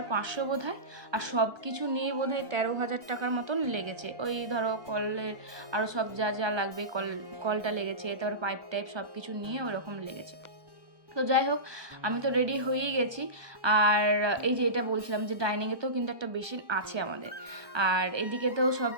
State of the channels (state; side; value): late; left; 1.2 ms